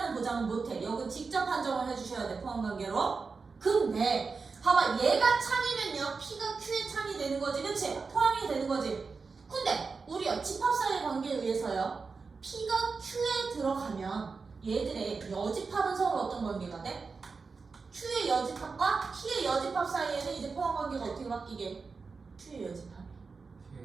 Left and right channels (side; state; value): left; quieter; 4.6 dB